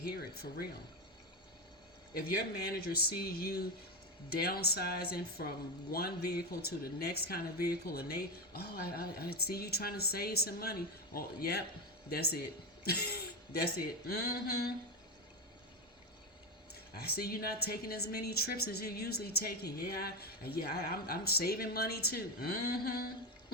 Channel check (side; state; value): both; normal; correlation 0.12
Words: it for real. If your manager sees you downsizing from one vehicle to the next kind of vehicle, and I see you trying to save some money. Oh, yep, that's it. That's it. I see you not taking as many trips as you're usually taking. I'm saving money too.